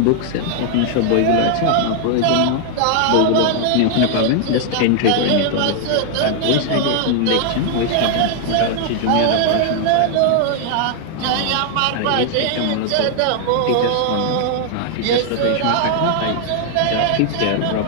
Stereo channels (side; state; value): both; different; correlation 0.00